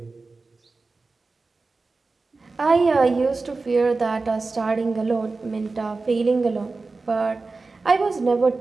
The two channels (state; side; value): quieter; left; 3.8 dB